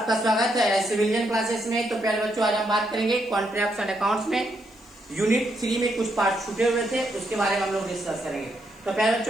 स्वागत है सिविलियन क्लासेस में। तो प्यारे बच्चों, आज हम बात करेंगे कॉन्ट्रैक्ट्स एंड अकाउंट्स में यूनिट 3 में कुछ पार्ट छूटे हुए थे, उसके बारे में हम लोग डिस्कस करेंगे। तो प्यारे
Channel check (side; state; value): left; noise; hiss, 30 dB below the sound